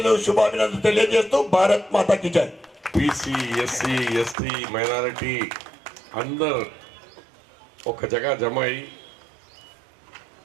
శుభాభినందనలు తెలియజేస్తూ భారత్ మాతాకి జై. బీసీ ఎస్సీ ఎస్టీ మైనారిటీ అందరు ఒక జగ జమ అయి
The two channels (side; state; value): left; drops out; at 4.4 s